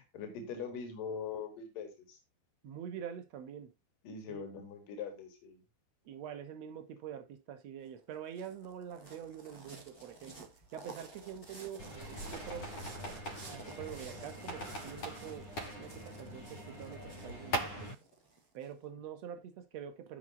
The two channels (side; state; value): right; late; 9.7 ms